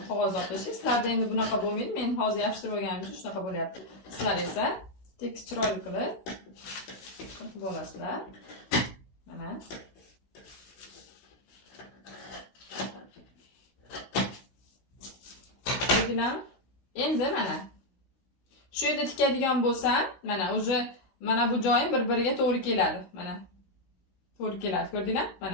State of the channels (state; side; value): late; right; 16 ms